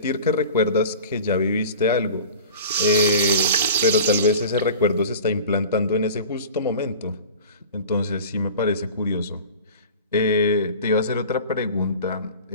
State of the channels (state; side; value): inverted; both; correlation -0.38